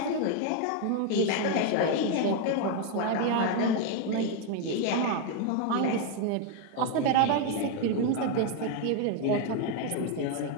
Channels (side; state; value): both; different; correlation 0.01